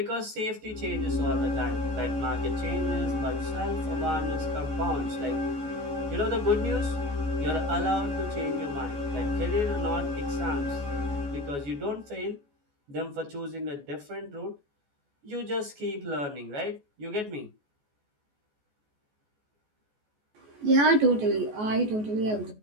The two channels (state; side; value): late; left; 14 ms